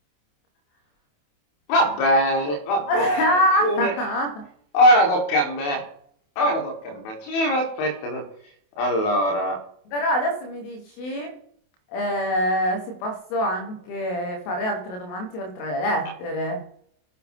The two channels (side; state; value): right; late; 28 ms